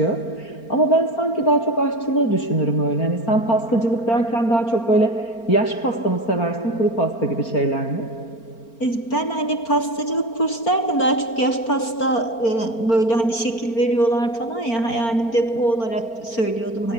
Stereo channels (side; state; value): right; late; 4.4 ms